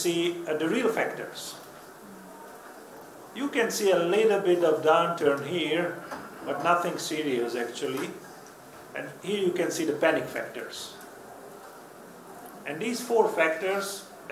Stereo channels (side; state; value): both; identical; correlation 1.00